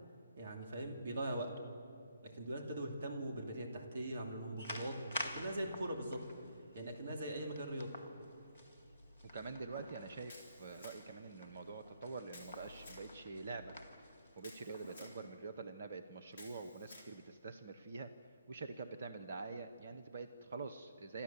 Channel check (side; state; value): both; inverted; correlation -0.73